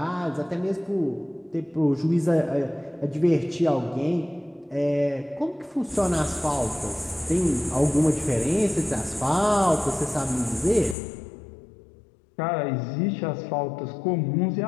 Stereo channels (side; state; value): right; drops out; at 11.0 s